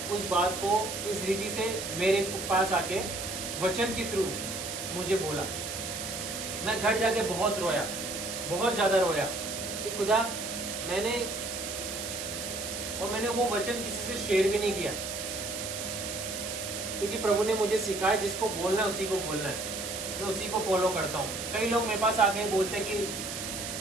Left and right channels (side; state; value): right; noise; hiss, 6 dB below the sound